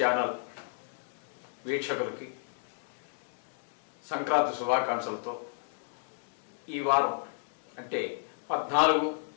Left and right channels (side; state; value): right; silent; digital silence